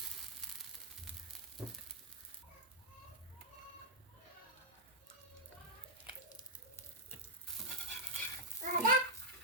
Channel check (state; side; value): normal; both; correlation -0.09